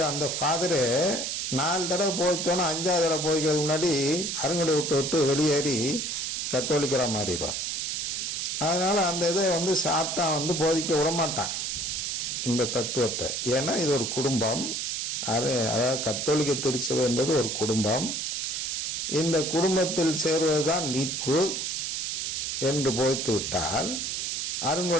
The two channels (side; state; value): right; noise; hiss, 2 dB below the sound